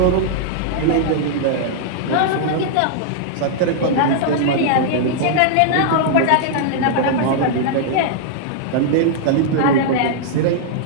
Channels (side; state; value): both; different; correlation -0.01